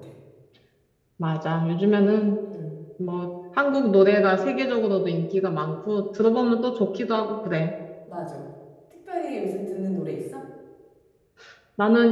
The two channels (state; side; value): identical; both; correlation 1.00